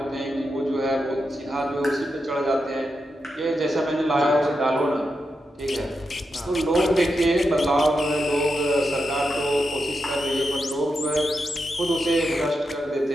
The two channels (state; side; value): normal; both; correlation 0.87